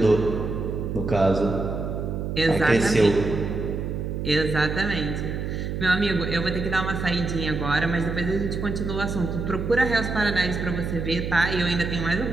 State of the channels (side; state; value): right; noise; hum, 3 dB below the sound